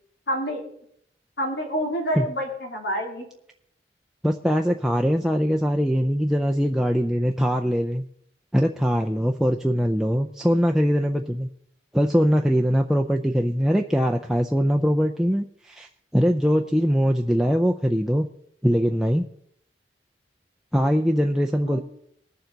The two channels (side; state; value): both; normal; correlation 0.92